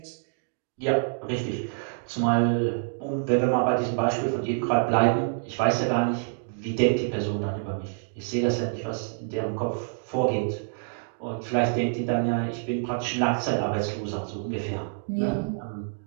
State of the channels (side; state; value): left; silent; digital silence